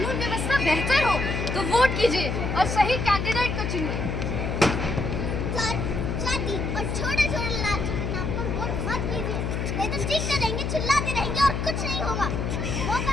व्यवस्था बेहतर हो, तो वोट कीजिए और सही कैंडिडेट को चुनिए। जाति और छोटे छोटे लालची के नाम पर वोट मत कीजिए, नहीं तो चीखते रहेंगे, चिल्लाते रहेंगे और कुछ नहीं होगा। मौका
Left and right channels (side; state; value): left; noise; hum, 1 dB below the sound